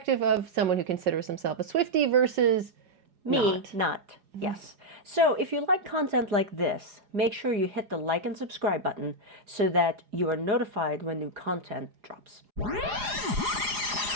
of someone who considers himself a Swiftie versus Me, not. Yes. So if you like content like this, make sure you hit the like and subscribe button so that you are notified when new content drops.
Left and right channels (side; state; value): left; late; 4.9 ms